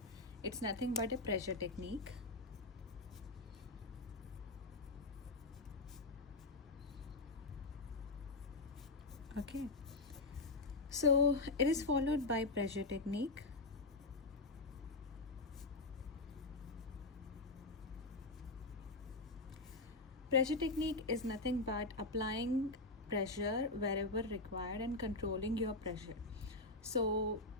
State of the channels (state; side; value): quieter; right; 3.1 dB